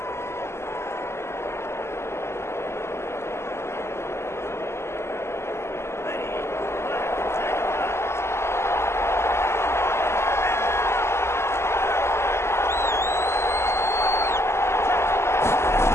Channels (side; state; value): right; late; 0.13 ms